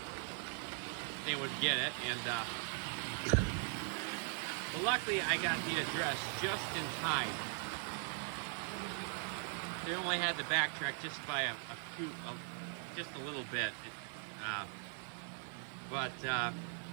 get it, and well, luckily I got the address just in time. They only had to backtrack just by just a little bit, but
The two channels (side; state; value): left; silent; 51 dB below the other